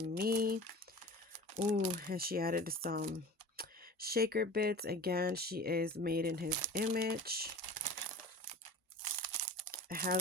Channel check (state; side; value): normal; both; correlation 0.38